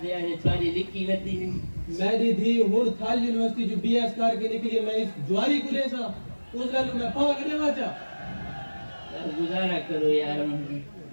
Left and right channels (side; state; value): both; inverted; correlation -1.00